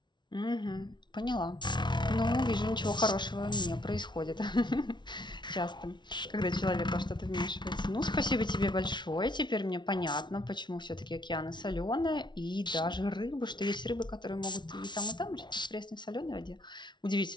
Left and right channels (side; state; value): right; late; 0.22 ms